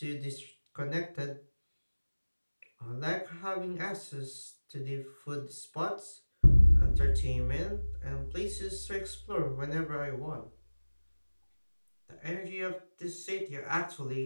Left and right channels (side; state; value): both; inverted; correlation -1.00